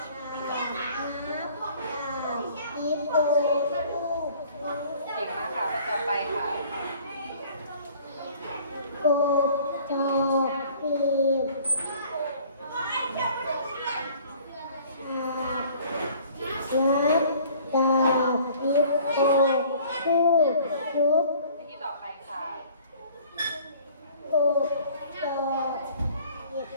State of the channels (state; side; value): inverted; both; correlation -0.52